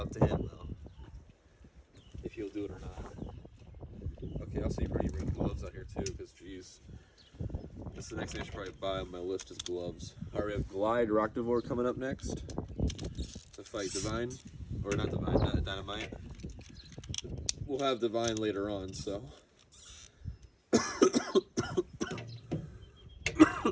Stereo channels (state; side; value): identical; both; correlation 1.00